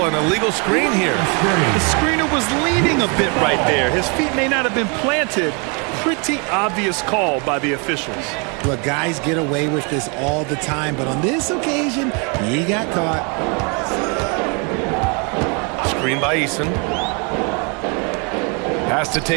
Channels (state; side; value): quieter; left; 33.9 dB